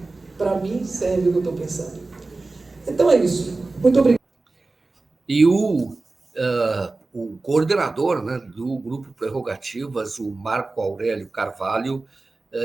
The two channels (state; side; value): quieter; left; 3.4 dB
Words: Para mim, serve o que eu estou pensando. Então é isso. Muito obrigado. E o coordenador, né, do Grupo Prerrogativas, o Marco Aurélio Carvalho,